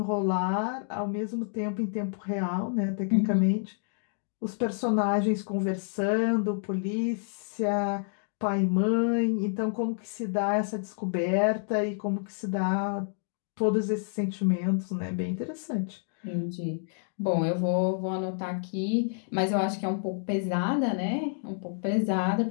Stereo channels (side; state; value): right; silent; digital silence